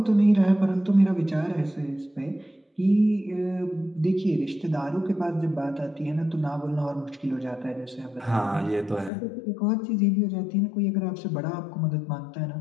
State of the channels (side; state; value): right; drops out; at 9.1 s